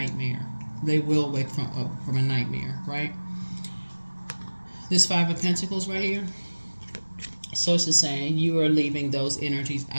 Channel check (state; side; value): inverted; both; correlation -1.00